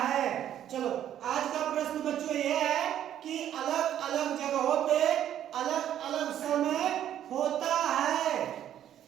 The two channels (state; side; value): quieter; left; 10.9 dB